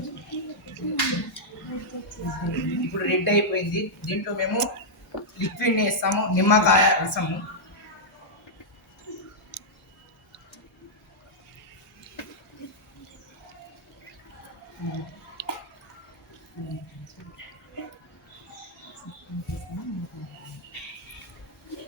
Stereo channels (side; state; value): both; normal; correlation -0.07